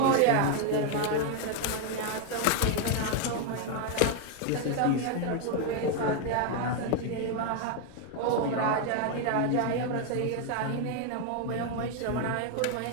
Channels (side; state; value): both; different; correlation 0.01